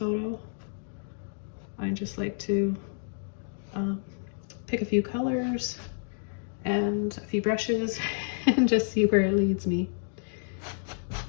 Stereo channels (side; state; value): right; silent; digital silence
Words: I just like to pick a few colors and a few brushes and just see where it leads me.